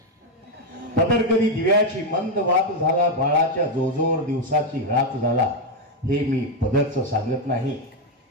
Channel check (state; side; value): normal; both; correlation 0.05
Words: पदर कधी दिव्याची मंद वात झाला, बाळाच्या जोजोर दिवसाची रात झाला. हे मी पदरचं सांगत नाही.